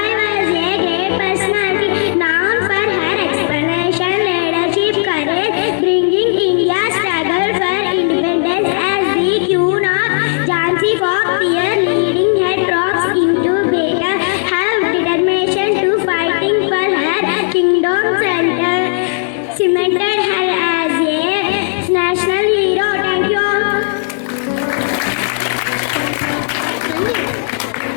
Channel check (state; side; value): silent; right; 66 dB below the other